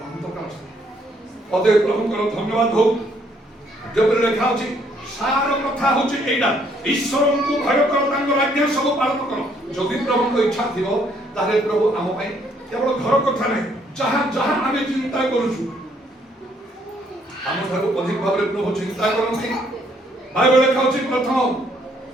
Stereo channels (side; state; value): both; normal; correlation 0.67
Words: অন্তকাল পদে প্রভুଙ୍କର ধন্যবাদ হোক যেপରି লেখা ଅଛି ସାର କଥା ହଉଛି ଏଇଟା ଈଶ୍ୱରଙ୍କୁ ଭୟ କର ତାଙ୍କର ଆଜ୍ଞା ସବୁ ପାଳନ କର ଯଦି ପ୍ରଭୁଙ୍କ ଇଚ୍ଛା ଥିବ ତାହେଲେ ପ୍ରଭୁ ଆମ ପାଇଁ କେବଳ ଘର କଥା ନାହିଁ ଯାହା ଯାହା ଆମେ ଚିନ୍ତା କରୁଛୁ ଆମ ଠାରୁ ଅଧିକ ଭାବରେ ପ୍ରଭୁ ଚିନ୍ତା କରନ୍ତି ବାଇବେଲ ଲେଖା ଅଛି ପ୍ରଥମ